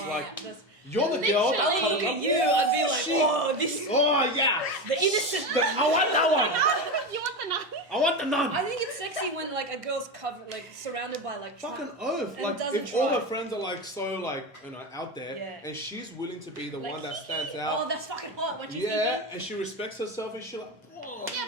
like, you're the girl I that's look at you, I'd be like, oh, yeah. The innocent. I want that one. You want the nun? I want the nun. I think it's sexy when like a girl's covered, like surrounded by like fucking oath. Like, if all her friends are like so like out there, and she's willing to be the one that stands out. Oh, that's fucking hot. What you think? And she respects herself, and she like. Oh. Yeah,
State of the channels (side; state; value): both; normal; correlation 0.19